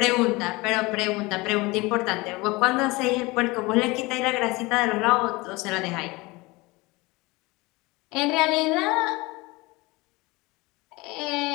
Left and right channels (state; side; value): quieter; right; 23.1 dB